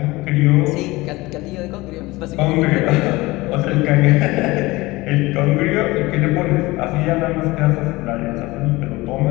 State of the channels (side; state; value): right; quieter; 20.8 dB